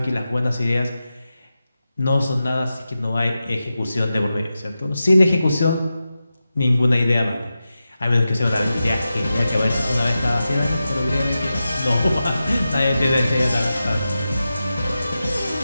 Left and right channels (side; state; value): both; inverted; correlation -0.92